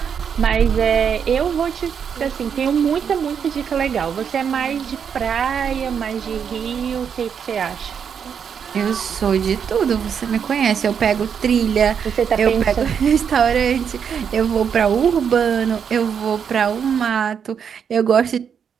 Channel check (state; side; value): quieter; left; 7.3 dB